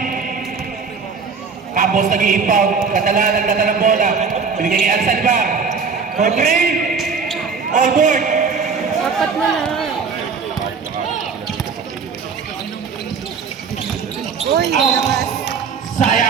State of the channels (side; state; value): left; quieter; 5.5 dB